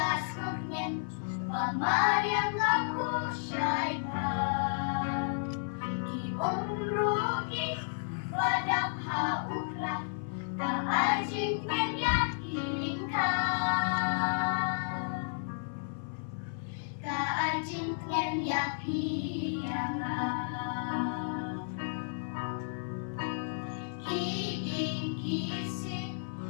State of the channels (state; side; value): silent; right; 56 dB below the other